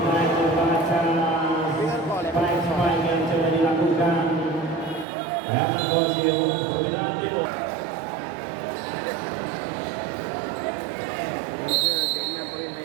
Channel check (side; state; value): left; drops out; at 5.1 s